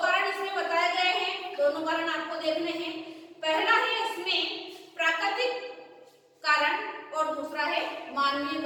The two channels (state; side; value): identical; both; correlation 1.00